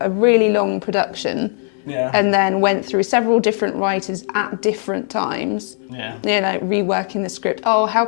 a really long production. Yeah. And then went through several different writers at different times. Yeah. Reworking the script. Oh, how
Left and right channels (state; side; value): silent; right; 58 dB below the other